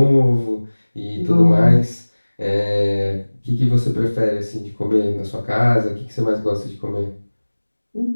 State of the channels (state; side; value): inverted; both; correlation -1.00